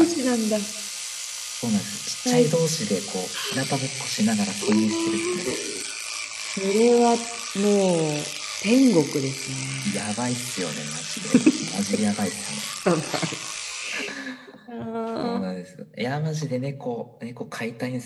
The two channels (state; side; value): identical; both; correlation 1.00